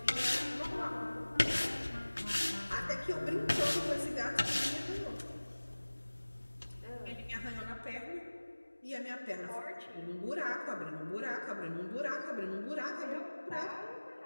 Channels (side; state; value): both; inverted; correlation -1.00